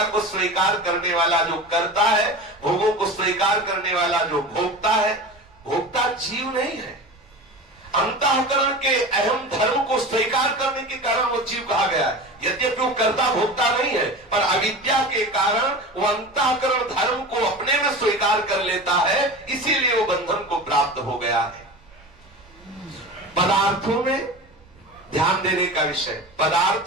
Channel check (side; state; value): both; normal; correlation 0.32